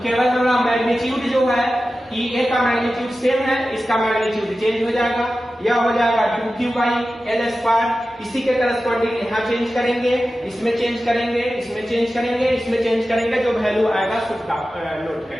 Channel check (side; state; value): both; normal; correlation 0.94